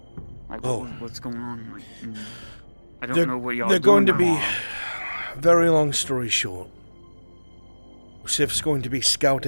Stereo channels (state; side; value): inverted; both; correlation -1.00